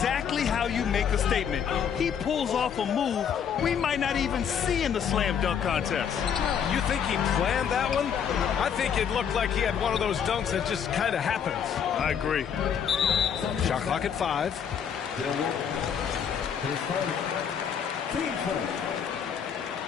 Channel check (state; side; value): quieter; right; 7.8 dB